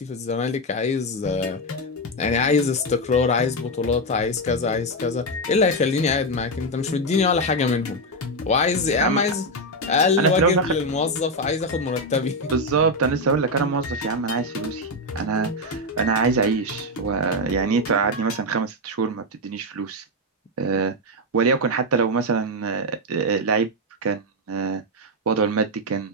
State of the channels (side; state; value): both; normal; correlation 0.06